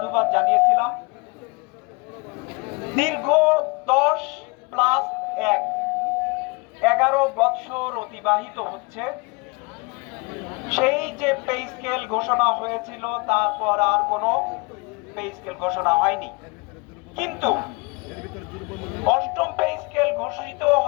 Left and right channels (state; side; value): quieter; right; 29.0 dB